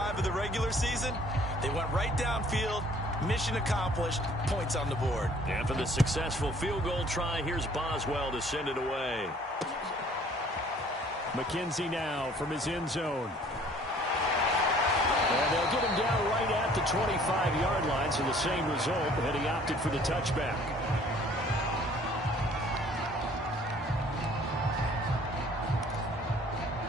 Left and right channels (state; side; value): normal; both; correlation 0.55